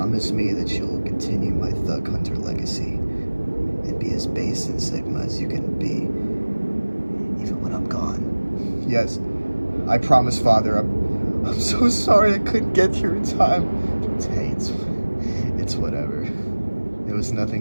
me that you'll continue my Thug Hunter legacy and be as base and Sigma as you can be, even when I'm gone. Yes, I promise, Father. I'm so sorry I couldn't get here in time. Hey, it's whatever. There was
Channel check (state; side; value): inverted; both; correlation -1.00